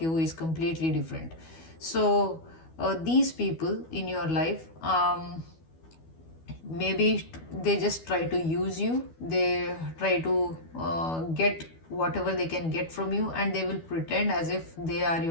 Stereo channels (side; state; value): right; late; 12 ms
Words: is completely different. So these people in your life, maybe they just try to use you. They try to get whatever they can get from you, and they will pretend as if they are